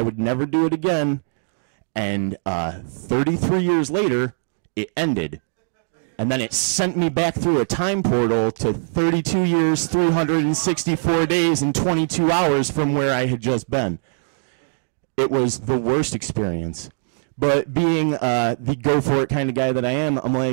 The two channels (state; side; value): silent; left; digital silence